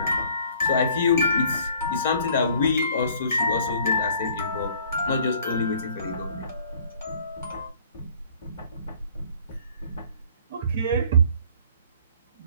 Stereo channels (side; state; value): both; inverted; correlation -0.56